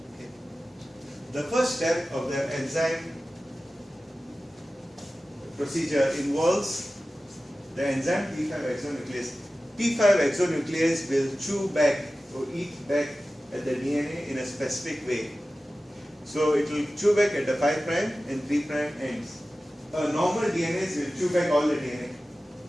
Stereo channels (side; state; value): both; normal; correlation 0.95